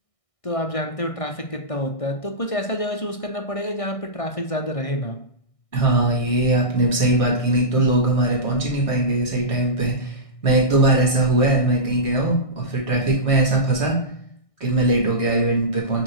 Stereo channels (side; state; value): right; late; 1.6 ms